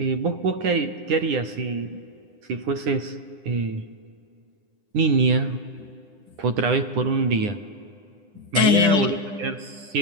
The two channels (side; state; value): left; late; 10 ms